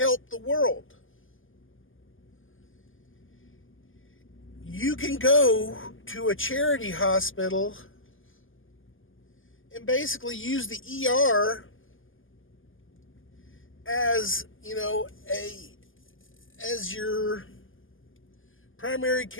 the world. You can go to a charity hospital and basically use the ER as, as your primary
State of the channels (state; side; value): late; right; 0.58 ms